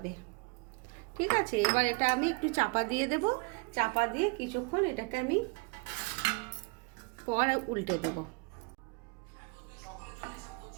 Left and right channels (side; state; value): left; quieter; 29.3 dB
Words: ঠিক আছে, এবার এটা আমি একটু চাপা দিয়ে দেব। চাপা দিয়ে কিছুক্ষণ এটাকে আমি পর উল্টে দেব।